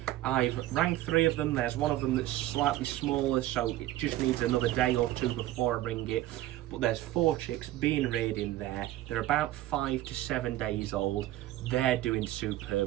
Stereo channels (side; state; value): left; quieter; 15.3 dB